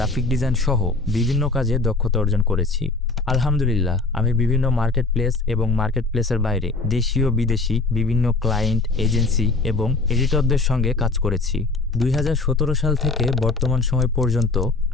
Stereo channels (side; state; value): right; quieter; 3.6 dB